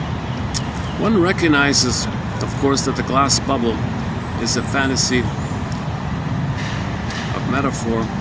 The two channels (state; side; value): identical; both; correlation 1.00